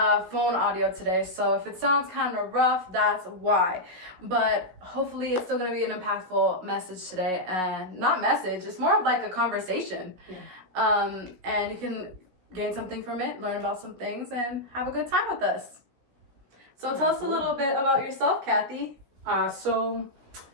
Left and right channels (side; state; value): left; late; 16 ms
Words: audio today. So if it sounds kind of rough, that's why. But hopefully it's still gonna be an impactful message today. And not message, it's more of like a conversation. Yeah. And you can gain something from it, learn about some things, and have a good time with us. So tell us a little bit about yourself, Kathy. So